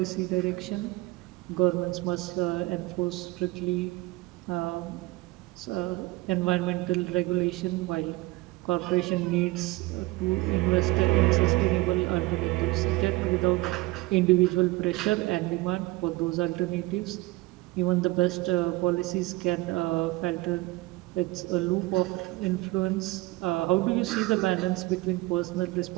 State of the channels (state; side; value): quieter; left; 20.5 dB